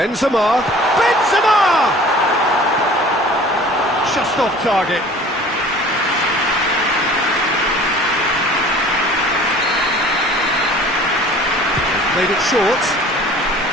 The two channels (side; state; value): both; normal; correlation 0.47